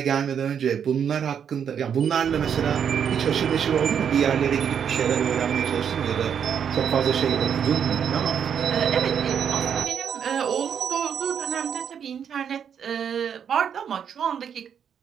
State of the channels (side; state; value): left; quieter; 7.9 dB